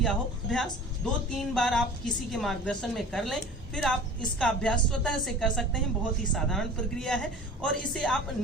हो अभ्यास, 2-3 बार आप किसी के मार्गदर्शन में कर लें, फिर आप इसका अभ्यास स्वतः से कर सकते हैं। बहुत ही साधारण प्रक्रिया है और इसे आप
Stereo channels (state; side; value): normal; both; correlation 0.41